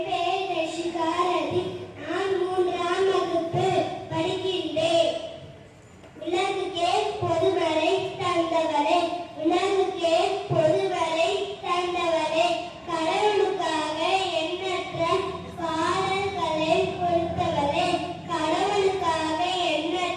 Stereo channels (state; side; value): identical; both; correlation 1.00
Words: பெயர் கர்சிகா ரவி. நான் மூன்றாம் வகுப்பு படிக்கின்றேன். உலகுக்கே பொதுவரை தந்தவரே, உலகுக்கே பொதுவரை தந்தவரே, கடவுளுக்காக எண்ணற்ற பாடல்களை கொடுத்தவரே, கடவுளுக்காக